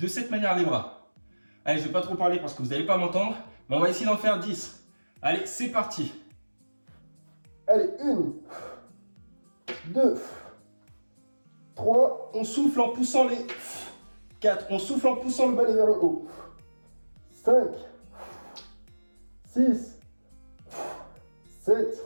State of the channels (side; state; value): both; inverted; correlation -1.00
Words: manière les bras. Allez, je ne vais pas trop parler parce que vous n'allez pas m'entendre, mais on va essayer d'en faire 10. Allez, c'est parti. Allez, 1, 2, 3, on souffle en poussant les 4, on souffle en poussant le balai vers le haut. 5, 6, 7,